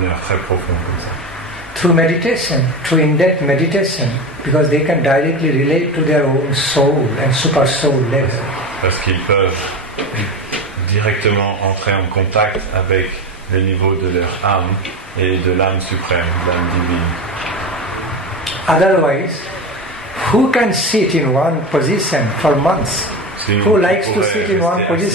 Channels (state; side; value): normal; both; correlation 0.23